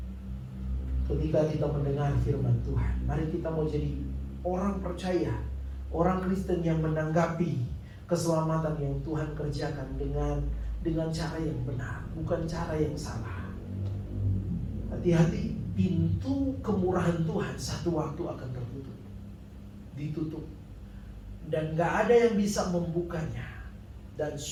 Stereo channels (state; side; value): identical; both; correlation 1.00